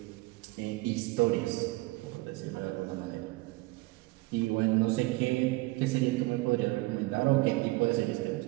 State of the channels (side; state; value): left; quieter; 22.0 dB